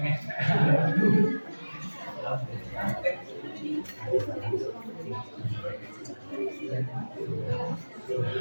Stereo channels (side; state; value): both; inverted; correlation -1.00